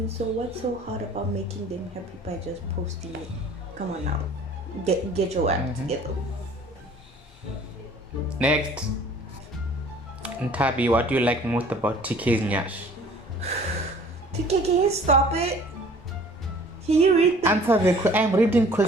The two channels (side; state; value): both; normal; correlation 0.51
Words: so what's so hard about making them happy by just posting it? Come on now, get your act together. Next, Ntabi, what do you like most about TK's nyash? TK, can you stop it? Can you read the... Answer I'm reading